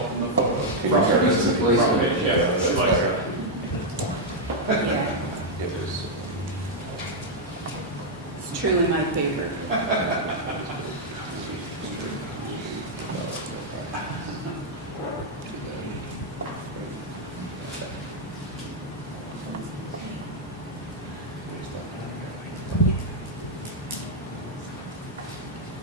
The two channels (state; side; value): normal; both; correlation -0.03